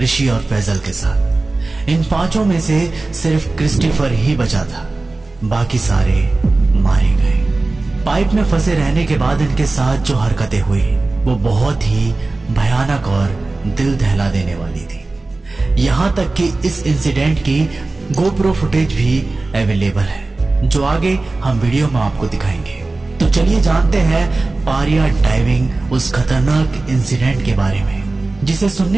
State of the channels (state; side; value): quieter; left; 3.3 dB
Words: और फैजल के साथ। इन 5 में से सिर्फ क्रिस्टोफर ही बचा था, बाकी सारे मारे गए। पाइप में फंसे रहने के बाद इनके साथ जो हरकतें हुई वो बहुत ही भयानक और दिल दहला देने वाली थी। यहां तक कि इस इंसिडेंट की गोप्रो फुटेज भी अवेलेबल है, जो आगे हम वीडियो में आपको दिखाएंगे। तो चलिए जानते हैं पारिया डाइविंग उस खतरनाक इंसिडेंट के बारे में, जिसे